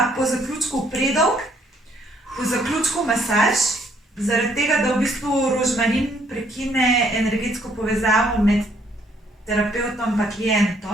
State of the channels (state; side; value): normal; both; correlation 0.67